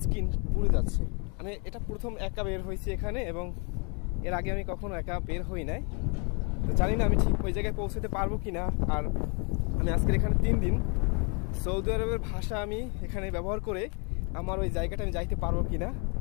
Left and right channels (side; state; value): right; quieter; 34.5 dB